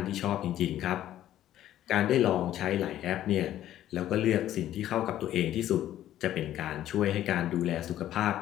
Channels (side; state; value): right; quieter; 12.5 dB